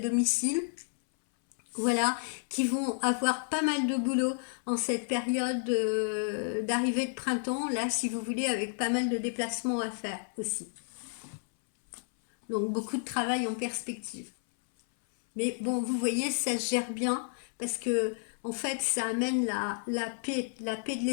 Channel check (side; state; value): right; silent; 57 dB below the other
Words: voilà, qui vont avoir pas mal de boulot en cette période d'arrivée de printemps, là, si vous voulez, avec pas mal de déplacements à faire aussi. Donc beaucoup de travail en perspective. Mais bon, vous voyez, ça se gère bien parce que en fait, ça amène la paix de